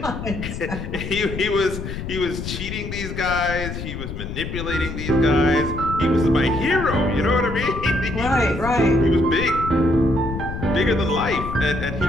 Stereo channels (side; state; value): left; noise; rumble, 7 dB below the sound